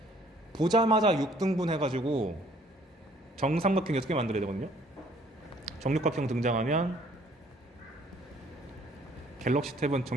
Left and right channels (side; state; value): both; normal; correlation 0.60